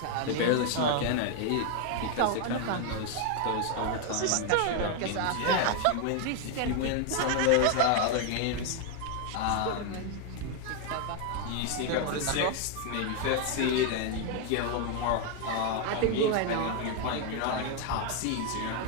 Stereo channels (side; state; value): both; different; correlation 0.01